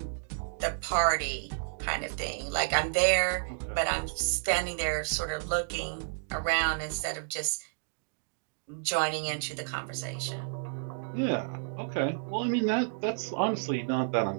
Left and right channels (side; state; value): left; silent; digital silence